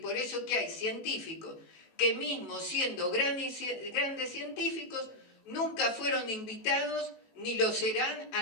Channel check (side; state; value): right; late; 18 ms